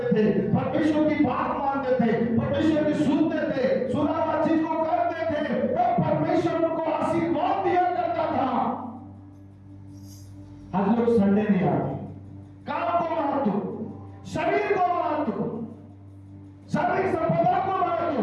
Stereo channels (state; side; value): identical; both; correlation 1.00